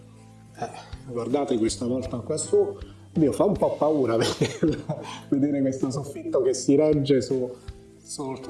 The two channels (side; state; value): both; identical; correlation 1.00